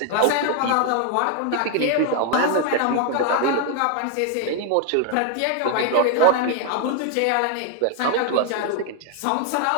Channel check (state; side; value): different; both; correlation 0.00